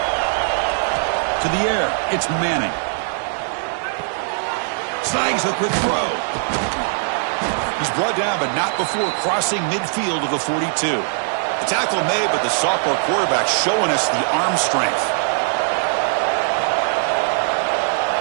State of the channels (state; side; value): silent; left; digital silence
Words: To the air, it's Manning. Snags the quick throw. He's brought down, but not before crossing midfield of the 42. The tackle made, but the sophomore quarterback showing us the arm strength.